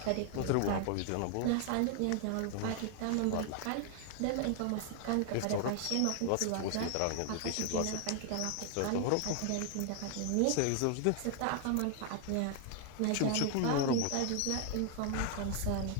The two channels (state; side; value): different; both; correlation 0.00